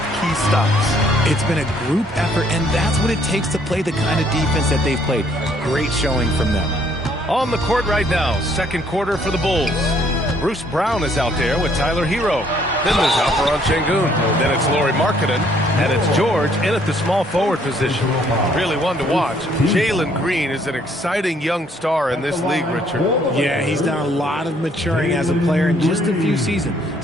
key stops. It's been a group effort, and that's what it takes to play the kind of defense that they've played. Great showing from them. On the court right now, second quarter for the Bulls. Bruce Brown is out there with Tyler Hero. Then there's Alperon Şengün. Then it's Lauri Markkanen. And it's George in at the small forward position. Really one to watch. Jalen Green is an exciting young star in this league, Richard. Yeah, he's done a lot of maturing as a player in just a few seasons.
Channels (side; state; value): both; normal; correlation 0.65